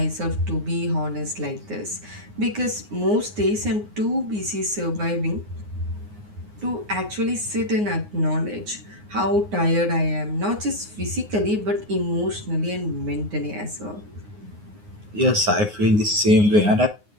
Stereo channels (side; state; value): left; late; 9.6 ms